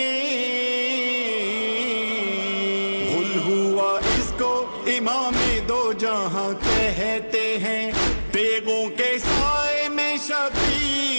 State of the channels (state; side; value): inverted; both; correlation -1.00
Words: غل ہوا اس کو امام دو جہاں کہتے ہیں، تیغوں کے سائے میں